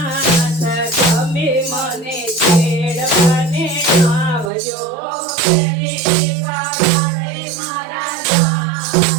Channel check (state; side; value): drops out; left; at 4.5 s